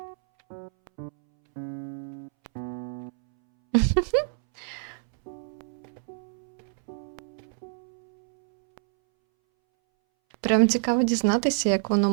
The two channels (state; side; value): silent; left; 60 dB below the other